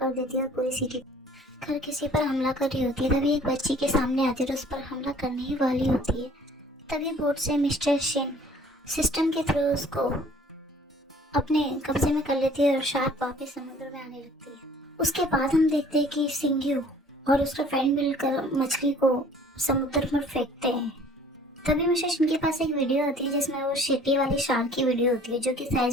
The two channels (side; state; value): both; normal; correlation 0.53